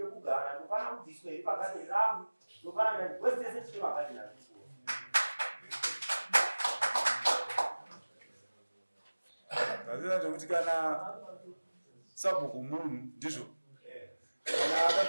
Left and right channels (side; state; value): both; inverted; correlation -1.00